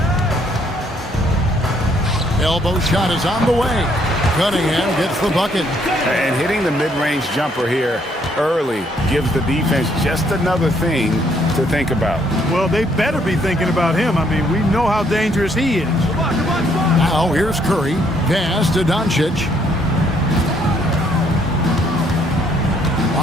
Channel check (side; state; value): both; normal; correlation 0.68